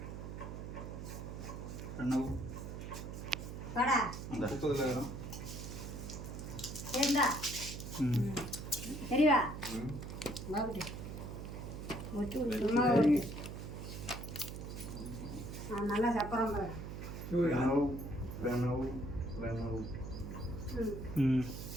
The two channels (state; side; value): noise; right; hum, 8 dB below the sound